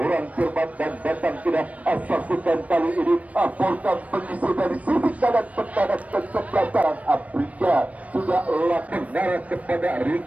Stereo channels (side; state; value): left; late; 0.067 ms